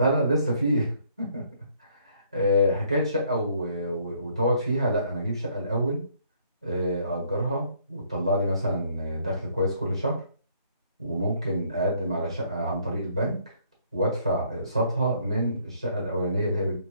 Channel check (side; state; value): both; inverted; correlation -0.65